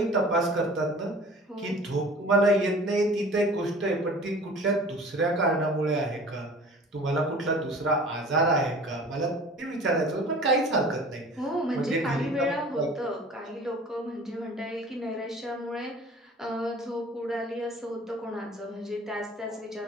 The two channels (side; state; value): both; normal; correlation 0.44